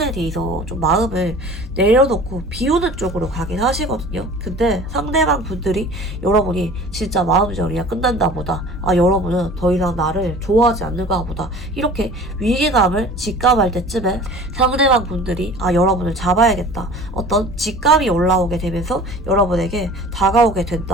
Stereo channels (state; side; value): normal; both; correlation 0.44